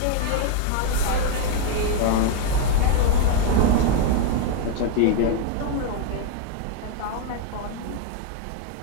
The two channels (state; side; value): different; both; correlation 0.01